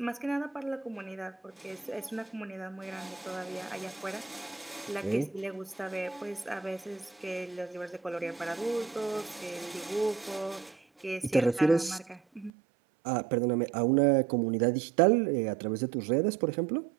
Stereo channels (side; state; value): left; drops out; at 12.5 s